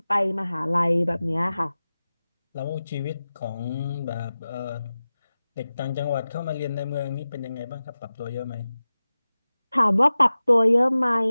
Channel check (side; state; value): both; inverted; correlation -0.95